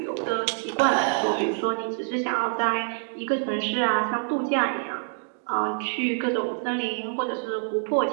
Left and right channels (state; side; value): silent; left; 61 dB below the other